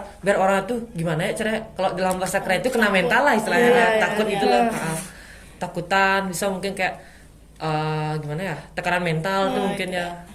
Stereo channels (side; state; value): both; identical; correlation 1.00